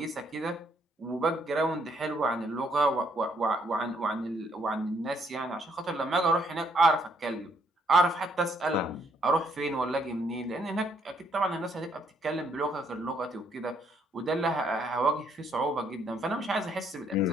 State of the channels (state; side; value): normal; both; correlation 0.70